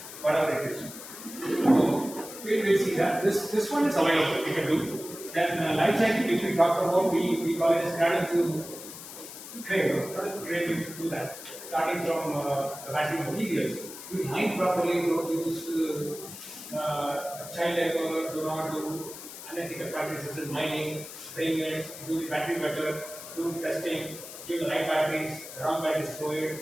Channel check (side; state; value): left; noise; hiss, 13 dB below the sound